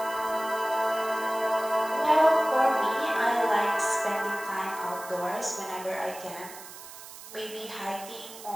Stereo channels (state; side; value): noise; right; hiss, 15 dB below the sound